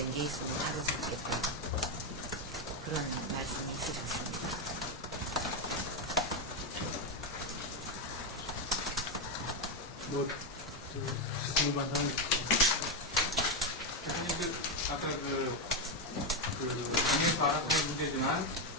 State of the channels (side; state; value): both; normal; correlation 0.06